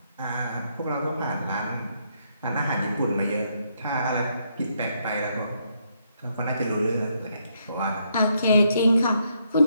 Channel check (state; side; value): inverted; both; correlation -0.75